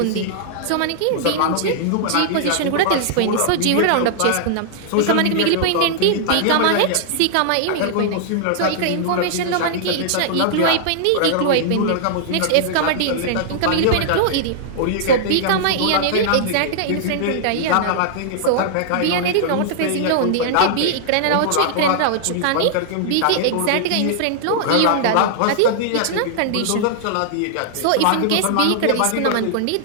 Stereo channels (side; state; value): both; different; correlation -0.01